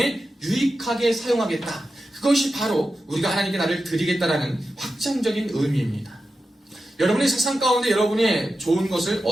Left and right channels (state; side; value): normal; both; correlation 0.91